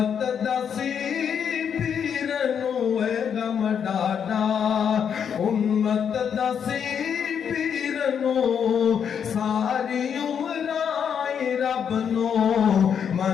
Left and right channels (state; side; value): quieter; right; 7.7 dB